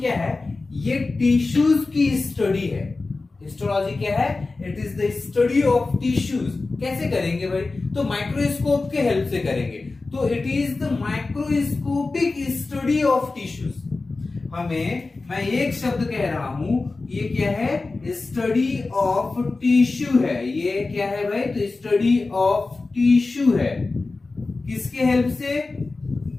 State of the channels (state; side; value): quieter; right; 3.6 dB